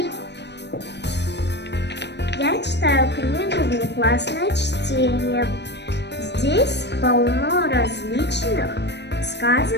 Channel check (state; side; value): late; right; 0.50 ms